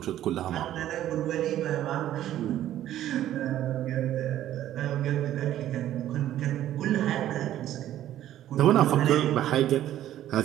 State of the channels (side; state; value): left; quieter; 12.5 dB